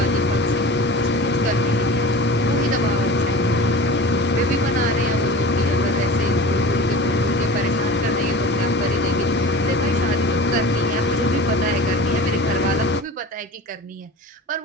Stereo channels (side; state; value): both; normal; correlation 0.36